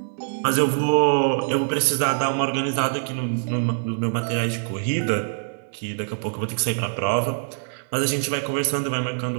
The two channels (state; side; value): silent; left; 58 dB below the other